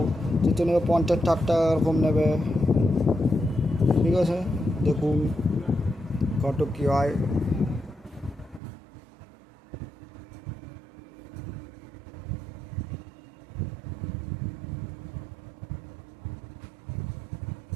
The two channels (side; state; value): left; drops out; at 8.6 s